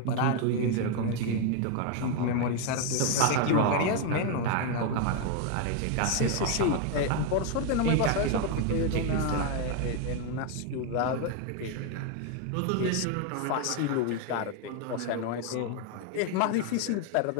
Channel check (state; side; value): different; both; correlation 0.01